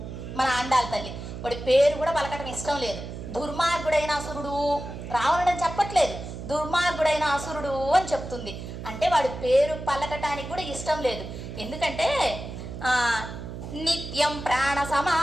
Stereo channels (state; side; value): noise; right; hum, 9 dB below the sound